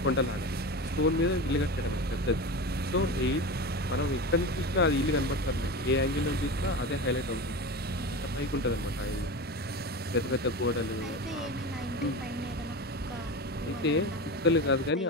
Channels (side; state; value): both; normal; correlation 0.26